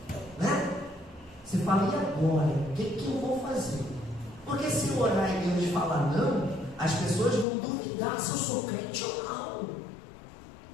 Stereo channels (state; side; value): drops out; right; at 7.5 s